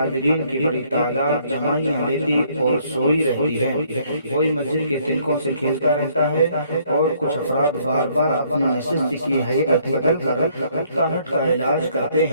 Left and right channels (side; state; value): both; inverted; correlation -0.65